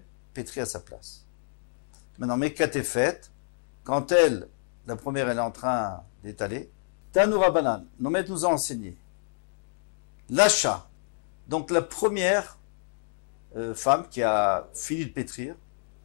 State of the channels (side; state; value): right; silent; digital silence